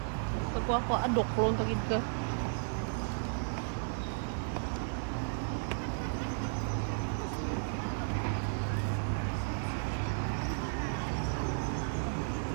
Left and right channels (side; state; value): left; silent; digital silence